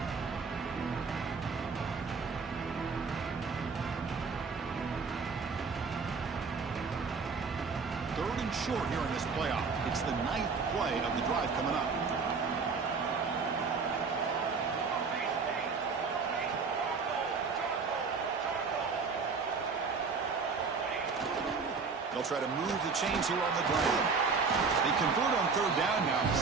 Third and short here in this playoff. It's the 9th play of the drive coming up. They'll try to move the chains here on the ground. They convert on third down now.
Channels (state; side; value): quieter; left; 4.9 dB